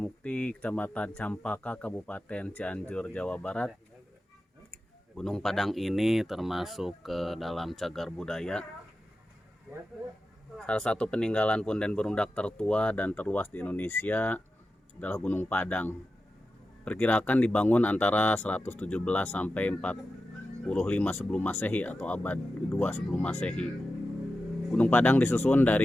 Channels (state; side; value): normal; both; correlation 0.92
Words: Kecamatan Campaka, Kabupaten Cianjur, Jawa Barat. Gunung Padang ini termasuk ke dalam cagar budaya. Salah satu peninggalan punden berundak tertua dan terluas di Indonesia adalah Gunung Padang. Perkirakan dibangun antara 117 sampai 45 sebelum Masehi atau abad kedua sebelum Masehi. Gunung Padang disusun